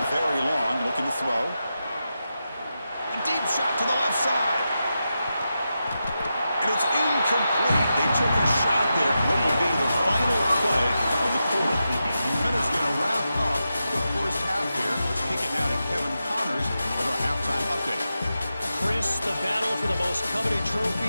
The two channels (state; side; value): inverted; both; correlation -0.89